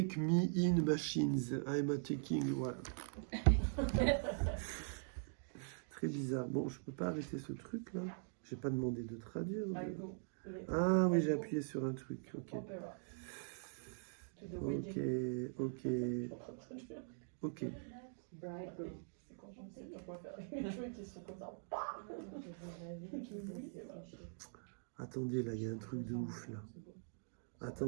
me in machines. I'm attacking. Voilà. Très bizarre. Bon, je peux pas arrêter ce truc là. J'ai pas demandé de traduire. Ah oui, j'ai appuyé sur un truc. Ok. Ok. Ok. Ok. C'est Je sais pas quoi faire avec mes cheveux qui sont comme ça. Attendez, là, il y a un truc de ouf, là.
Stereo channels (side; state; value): left; silent; digital silence